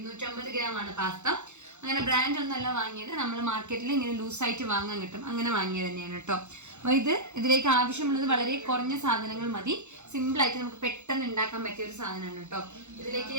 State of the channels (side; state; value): left; late; 0.83 ms